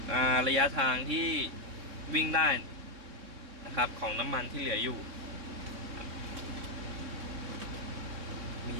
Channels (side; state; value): left; late; 3.6 ms